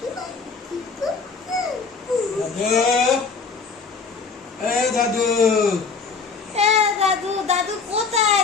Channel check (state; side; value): quieter; right; 4.9 dB